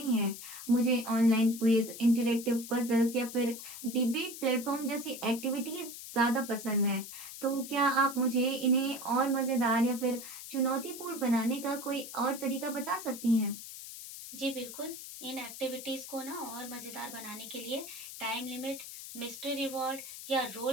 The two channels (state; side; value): noise; left; hiss, 11 dB below the sound